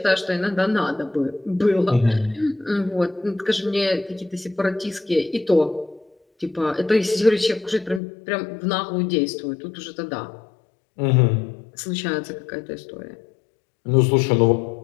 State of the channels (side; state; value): right; drops out; at 8.0 s